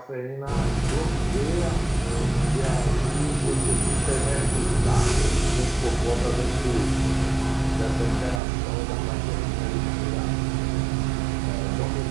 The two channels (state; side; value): drops out; left; at 8.4 s